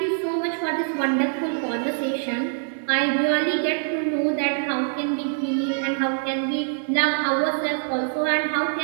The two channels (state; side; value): silent; left; 63 dB below the other